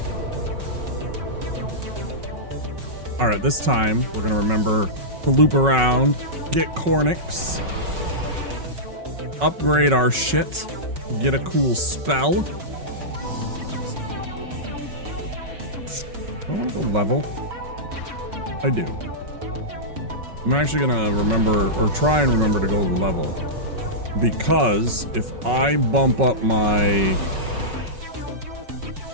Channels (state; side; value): late; left; 5.4 ms